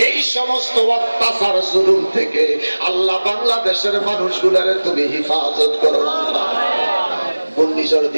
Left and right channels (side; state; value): both; inverted; correlation -1.00